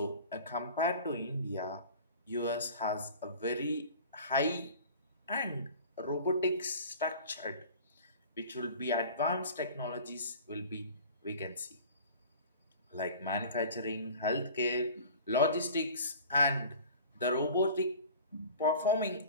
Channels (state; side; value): inverted; both; correlation -0.42